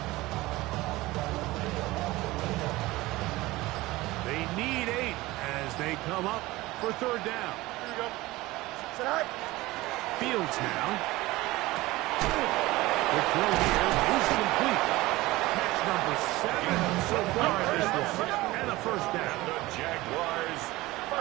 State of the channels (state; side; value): quieter; left; 19.3 dB